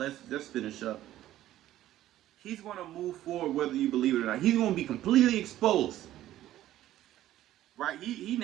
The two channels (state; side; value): quieter; left; 13.6 dB